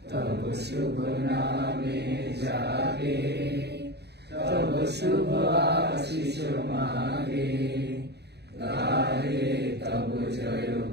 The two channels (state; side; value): late; left; 0.48 ms